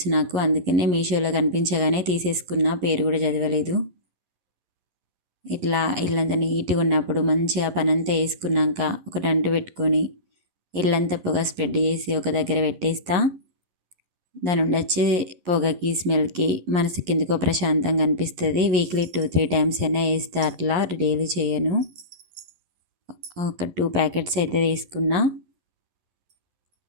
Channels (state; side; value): late; left; 11 ms